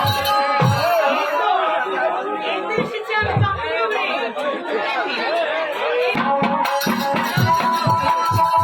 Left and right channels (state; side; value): identical; both; correlation 1.00